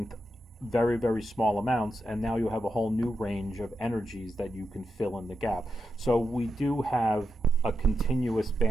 very, very small amounts, and now you have a whole new range of energies that you can fill in the gap. So we do have a continuous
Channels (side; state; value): both; normal; correlation 0.87